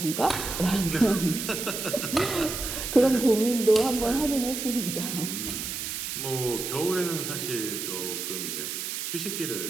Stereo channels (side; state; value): right; noise; hiss, 4 dB below the sound